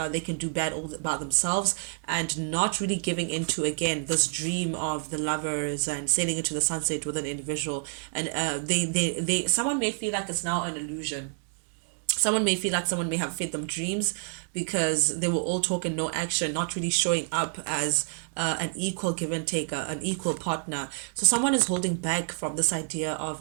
they can do bad all about themselves, and not really giving into again this dream of the Lovers and sailing into the sunset with an individual. And someone may feel like it's now an illusion. Someone may feel like someone may have fed them dreams, because they were all talk and no action, not really showing up as an equal give and take, an equal partner. So someone is holding back from this idea of,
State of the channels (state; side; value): silent; left; digital silence